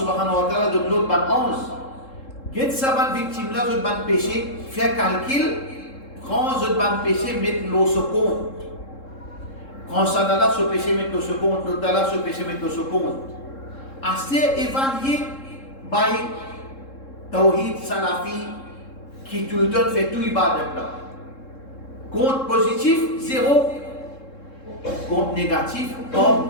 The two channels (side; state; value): right; late; 3.7 ms